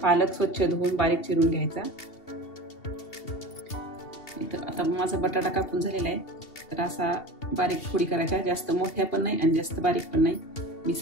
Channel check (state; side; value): late; right; 2.7 ms